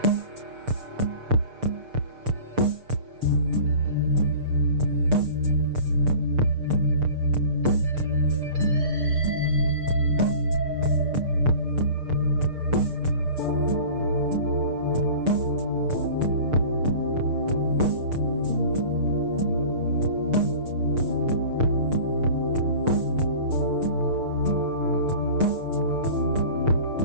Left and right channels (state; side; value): late; left; 6.6 ms